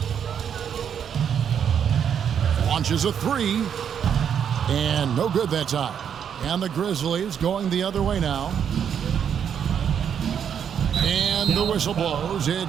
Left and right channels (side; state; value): left; quieter; 8.2 dB